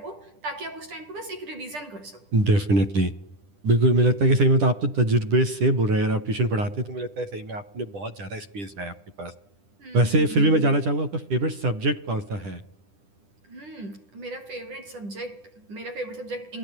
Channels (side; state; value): left; late; 10 ms